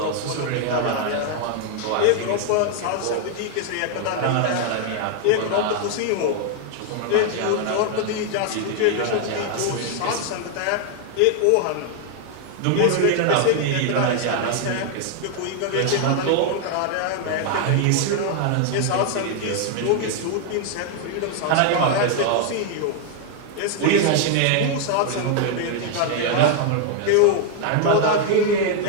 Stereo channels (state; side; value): different; both; correlation 0.00